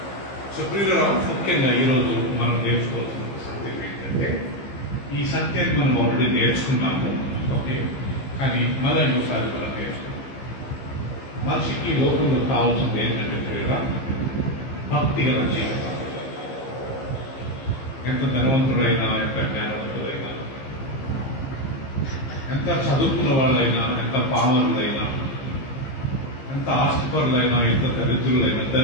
సో ప్రియులారా, ముఖ్యంగా ఈరోజు మనం నేర్చుకోవాల్సిన సత్యం ఏంటంటే, ఈ సత్యాన్ని మనం ఆల్రెడీ నేర్చుకున్నాము, ఓకే, కానీ మళ్ళీ ఇంకోసారి మనం నేర్చుకున్నాం. మనిషికి లోకంలో కావాల్సింది ఏంటంటే ప్రియులారా, భక్తి గల జీవితం. ఎంత ధనవంతుడైనా, ఎంత జ్ఞానవంతుడైనా, ఎంత చదువుకున్న వాళ్ళైనా, ఎంత పామరులైనా, ఎంత ఆస్తిపరులైనా, ఎంత దరిద్రులైనా,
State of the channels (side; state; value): right; late; 15 ms